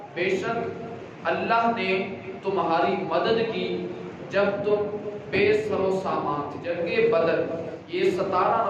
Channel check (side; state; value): both; identical; correlation 1.00